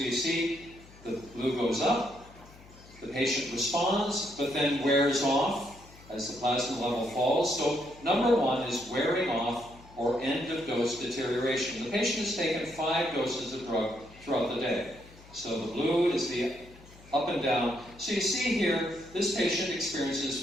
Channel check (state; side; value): noise; left; hum, 22 dB below the sound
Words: you see, the blue goes up, the patient responds, but then wears off as the plasma level falls. So number one is wearing off or end of dose deterioration. The patient has taken 5 doses of drug throughout the day. So the blue is the up and down. So you see here, this patient